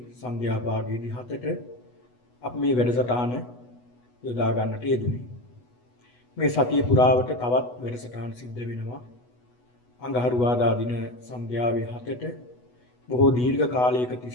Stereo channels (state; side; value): late; right; 8.1 ms